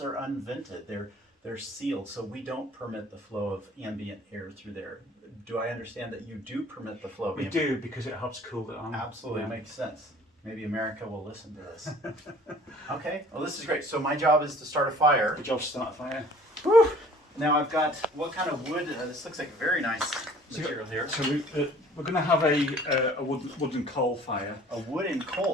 unvented. They're sealed, so we don't permit the flow of ambient air through there. Do I understand that you do permit the flow of ambient air? We do, because it helps cool it on. Absolutely, makes sense. Maybe America will listen to this. Okay, well this is great. So my job is to start a fire. Good job to start a fire. Whew. Now I've got, what kind of wood? This looks like a very nice material here. So we're going to have a wooden coal fire. A wooden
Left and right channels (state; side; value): normal; both; correlation 0.52